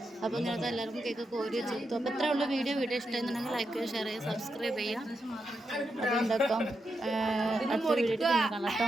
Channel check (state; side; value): normal; both; correlation 0.85